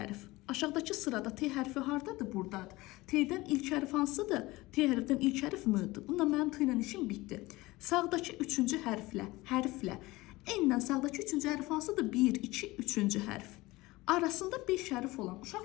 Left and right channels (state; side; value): quieter; right; 20.3 dB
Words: Aşağıdakı sırada T hərfi hardadır? Buradadır. T'dən ilk hərf hansıdır? T hərfdən ilk hərf M-dir. Bununla mənim T ilə işim bitdi. Sağdakı 3-cü hərflə N-dən sağdakı 3-cü hərf hansıdır? 1, 2, 3-cü hərf. Arasında 5 hərf olan,